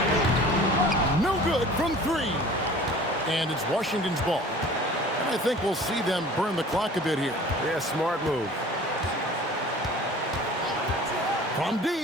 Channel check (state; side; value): normal; both; correlation 0.45